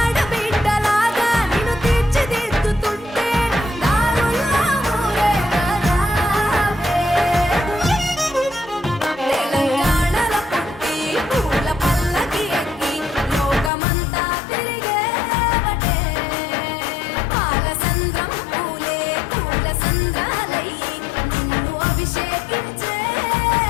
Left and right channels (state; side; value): drops out; right; at 13.7 s